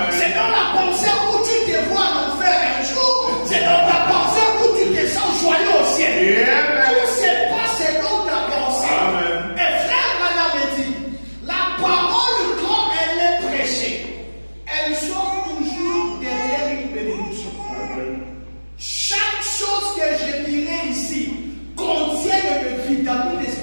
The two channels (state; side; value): inverted; both; correlation -1.00